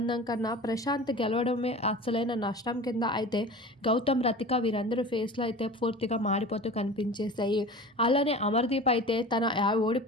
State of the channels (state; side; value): normal; both; correlation 0.37